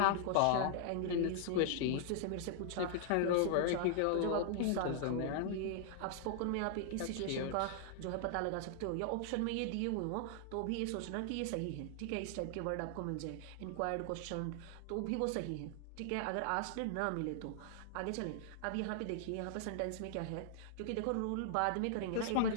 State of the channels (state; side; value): different; both; correlation -0.01